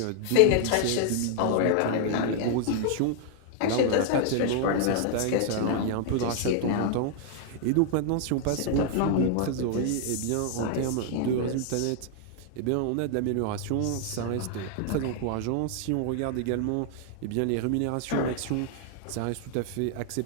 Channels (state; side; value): different; both; correlation 0.00